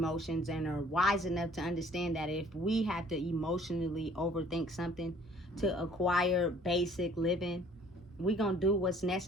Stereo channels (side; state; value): both; normal; correlation 0.56